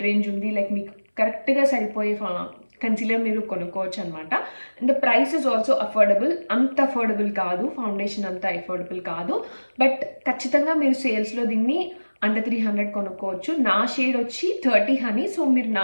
range ఉంది. Like మీకు కరెక్ట్గా సరిపోయే కన్సీలర్ మీరు కొనుక్కోవచ్చు అనమాట. And the price is also affordable. అంత అఫోర్డబుల్ కాదు, ఫౌండేషన్ అంత అఫోర్డబుల్ కాదు బట్ ఖచ్చితంగా మీరు సేల్స్లో దీన్ని అండర్ 300 కొనుక్కోవచ్చు. నా షేడ్ వచ్చి 30 హనీ. సో మీరు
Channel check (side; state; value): both; inverted; correlation -1.00